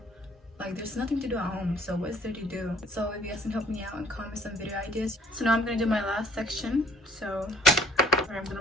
like there's nothing to do at home, so what's there to do? So if you guys can help me out and comment some video ideas. So now I'm gonna do my last section. So I'm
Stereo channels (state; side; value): normal; both; correlation 0.58